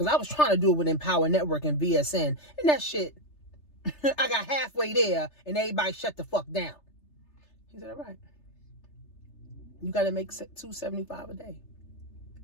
I was trying to do it with Empower Network and VSN. And that shit, I got halfway there and everybody shut the fuck down. He said, all right. You got to make $275 a day.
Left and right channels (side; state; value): right; late; 3.3 ms